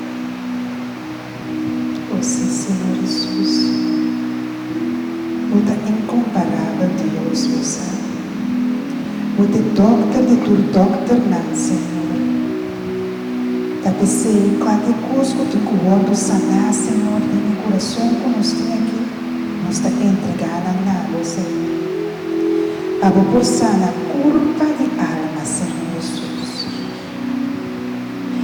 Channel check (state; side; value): identical; both; correlation 1.00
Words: você, Senhor Jesus. Você é incomparável, Deus, você. Você é doctor de tu doctor, não, Senhor. Da pensei em qualquer coisa que tu corpo sanar, Senhor, em meu coração, como nós temos aqui, nós está entregando a você. Abo por sana culpa de alma, Senhor Jesus.